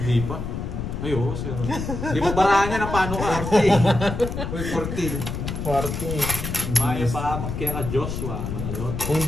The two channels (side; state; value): left; noise; rumble, 5 dB below the sound